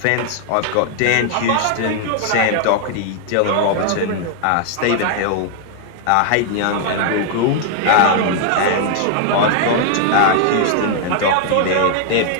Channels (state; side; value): different; both; correlation 0.00